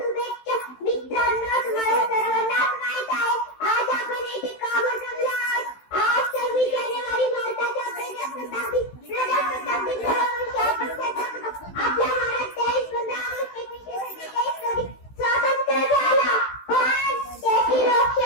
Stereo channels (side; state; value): right; late; 16 ms